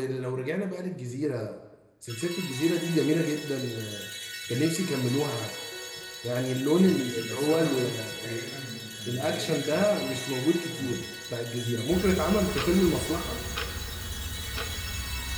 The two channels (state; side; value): identical; both; correlation 1.00